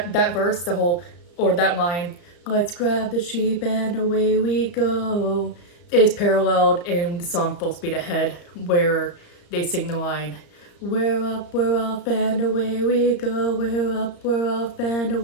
verse, the whole, or that line, let's grab the sheep and away we go, is paralleled in the song Full Speed Ahead, where they sing the line, we're up, we're off, and away we go, we're up, we're off, and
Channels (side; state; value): right; late; 34 ms